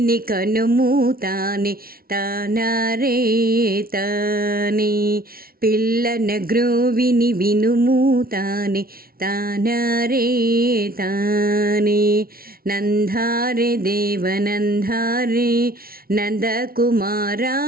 కనుము తానే తానారే తానే పిల్లన గ్రోవిని వినుము తానే తానారే తానే నందారే దేవనందారే నందకుమారా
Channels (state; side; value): late; left; 0.43 ms